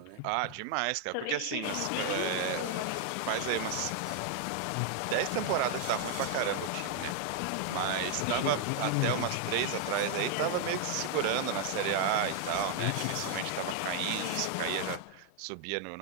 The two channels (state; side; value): different; both; correlation 0.00